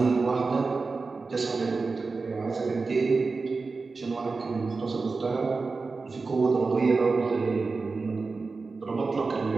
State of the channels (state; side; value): quieter; left; 4.1 dB